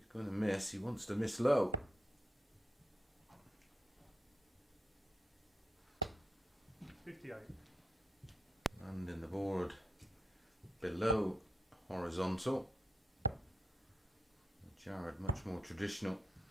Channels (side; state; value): both; normal; correlation 0.81